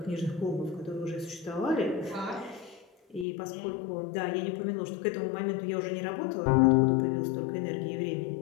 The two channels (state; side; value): drops out; right; at 3.2 s